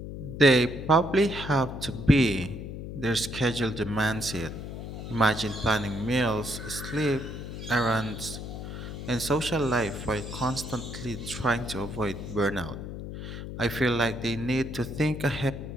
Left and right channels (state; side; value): noise; left; hum, 8 dB below the sound